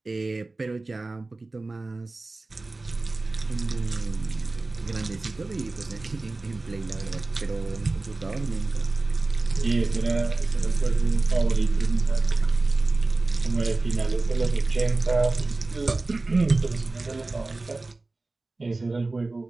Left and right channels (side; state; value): left; quieter; 3.3 dB